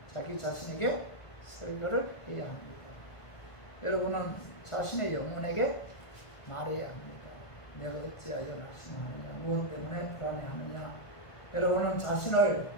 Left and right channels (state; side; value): late; right; 1.5 ms